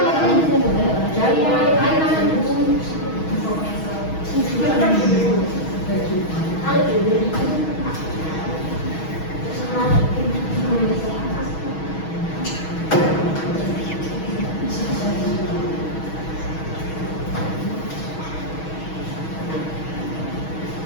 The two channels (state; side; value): late; right; 6.3 ms